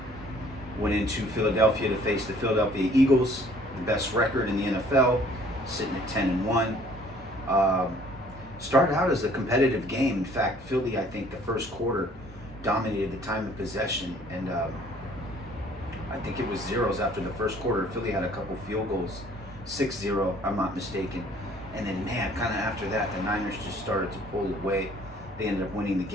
went into Philadelphia to face the Philadelphia Eagles, the best record in the NFL, sitting at 10-1. Started out as a competitive game. In fact, Philly, I think, the first quarter dominated the time of possession, and I think it was zeros after the first quarter. Philly had a couple field goals, 6-0, I'm not mistaken. And then, man, kind of after that, the Niners just started to pull away. They ended up winning the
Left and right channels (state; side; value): normal; both; correlation 0.57